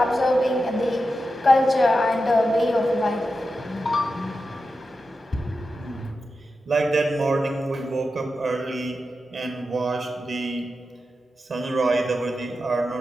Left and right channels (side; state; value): both; normal; correlation 0.90